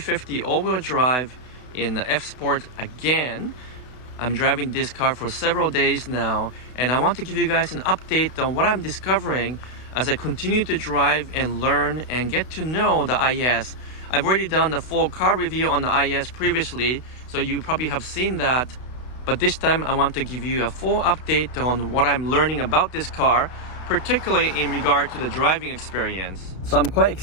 all-wheel drive in the F-Sport again. I'm driving this car for several days now, and I want to give you guys an update on what I'm discovering as I continue to drive and learn and get to know the IES. I've already done the full car review on the IES previously, so you probably have seen that. But this time I want to give you a full update on what I'm learning about this car, particularly in regard to the driving experience. So I'm quite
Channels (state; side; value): late; right; 32 ms